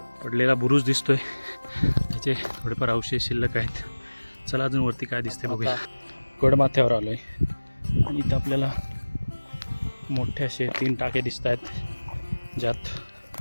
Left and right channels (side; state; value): both; inverted; correlation -1.00